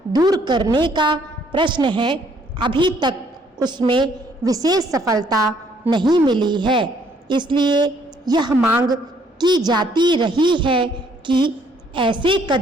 दूर करने का प्रश्न है, अभी तक उसमें विशेष सफलता नहीं मिली है। इसलिए यह मांग की जाती रही है कि ऐसे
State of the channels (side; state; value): both; normal; correlation 0.65